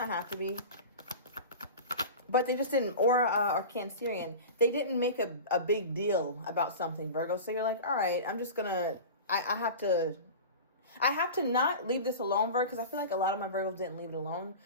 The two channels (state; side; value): inverted; both; correlation -0.32